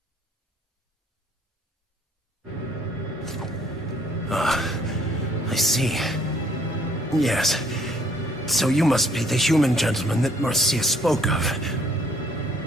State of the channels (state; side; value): normal; both; correlation 0.62